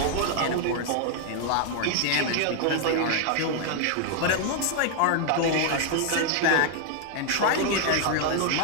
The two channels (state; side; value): different; both; correlation 0.00